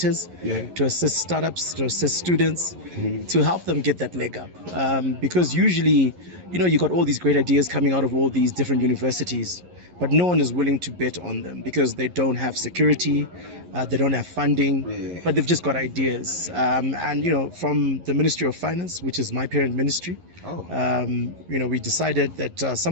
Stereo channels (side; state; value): left; late; 11 ms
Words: to assist startups, to assist students, to help them get that leg up. Because usually, you got all these great ideas coming out of all these different universities, but no one is willing to bet on them because they don't have security, they don't have funding, but they've just got ideas. And from the Ministry of Finance, which is my parent ministry, we decided that